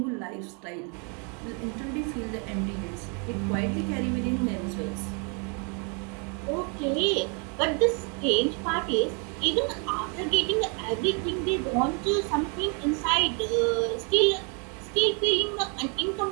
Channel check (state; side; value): quieter; left; 36.3 dB